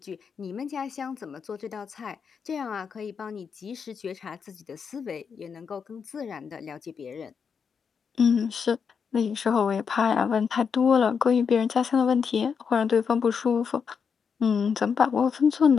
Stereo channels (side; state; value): right; quieter; 6.3 dB